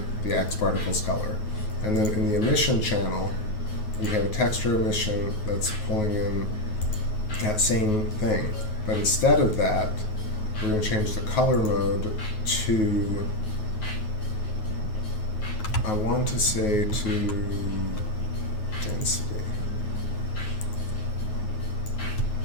the X particles color. And then in the emission channel, we have a texture emission that's pulling in that same thing. But instead of that, we're going to change the color mode to, I want to say to density.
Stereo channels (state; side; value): late; right; 9.4 ms